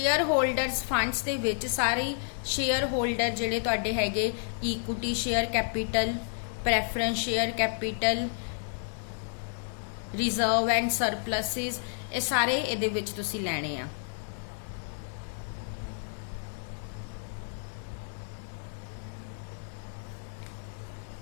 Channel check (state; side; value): silent; right; digital silence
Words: holders funds ਦੇ ਵਿੱਚ ਸਾਰੇ ਸ਼ੇਅਰ ਹੋਲਡਰ ਜਿਹੜੇ ਤੁਹਾਡੇ ਹੈਗੇ equity share capital, preference share capital, reserve and surpluses, ਇਹ ਸਾਰੇ ਇਹਦੇ ਵਿੱਚ ਤੁਸੀਂ ਲੈਣੇ ਆ।